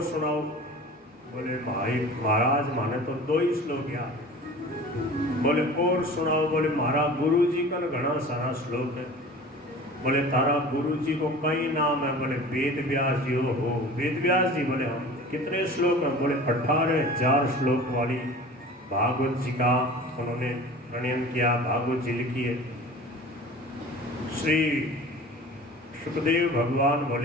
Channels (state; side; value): normal; both; correlation 0.40